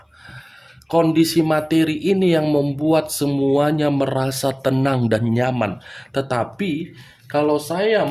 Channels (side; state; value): both; identical; correlation 1.00